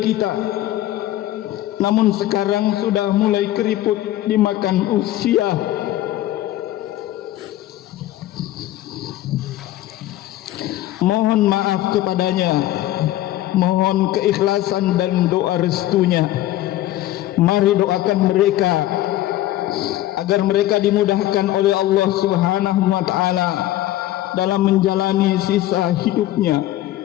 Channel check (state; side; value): quieter; right; 14.6 dB